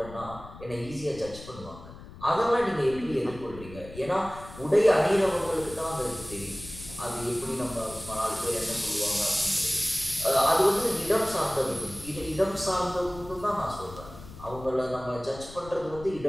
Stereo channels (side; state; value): left; noise; rumble, 16 dB below the sound